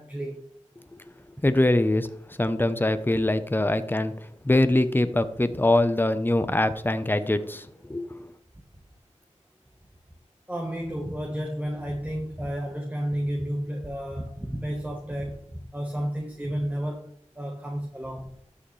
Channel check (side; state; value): both; normal; correlation 0.93